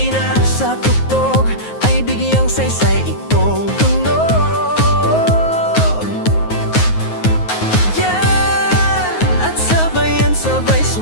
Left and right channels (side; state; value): right; late; 9.4 ms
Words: sa tugtog, ay bigyang saysay itong tunog. Yan, at sabayan sabay